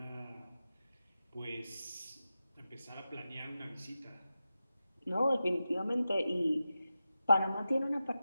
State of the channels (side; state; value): both; inverted; correlation -0.92